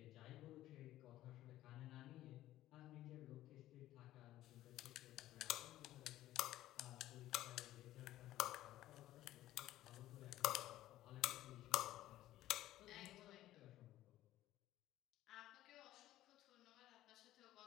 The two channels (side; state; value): right; quieter; 14.5 dB